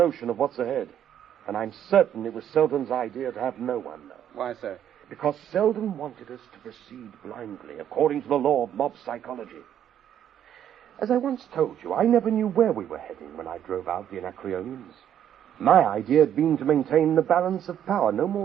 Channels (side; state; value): left; quieter; 10.0 dB